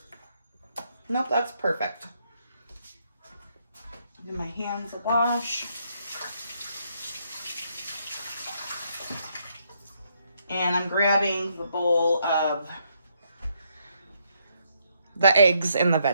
Nope, that's perfect. Give my hands a wash. And I'm grabbing the bowl of the eggs and the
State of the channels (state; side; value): inverted; both; correlation -0.74